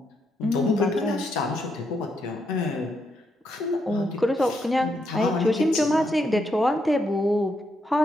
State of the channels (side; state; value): both; normal; correlation 0.79